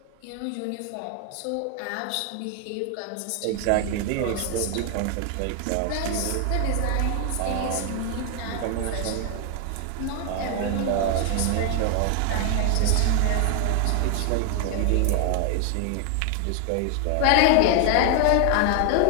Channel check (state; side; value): different; both; correlation 0.00